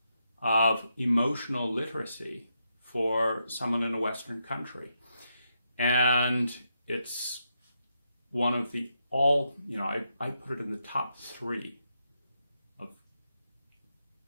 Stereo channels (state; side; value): inverted; both; correlation -0.82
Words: of emotional literacy for someone in a Western country. And it's one of the I put it in the top 3 of